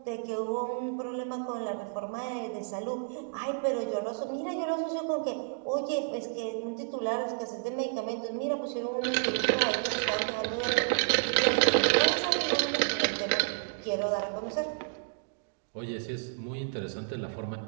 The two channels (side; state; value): left; silent; digital silence